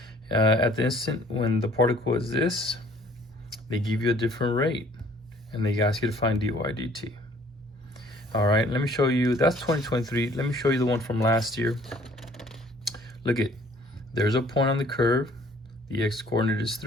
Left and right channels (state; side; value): normal; both; correlation 0.57